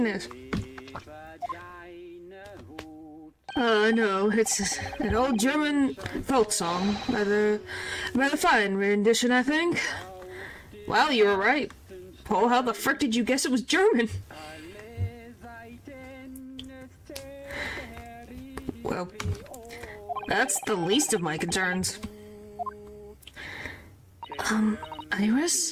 No, it's an old German folk song. Rather fine rendition, I think. Wow, you were right. Paul, how the frick did you guess it was German? Well, that's the least of my concerns.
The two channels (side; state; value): both; identical; correlation 1.00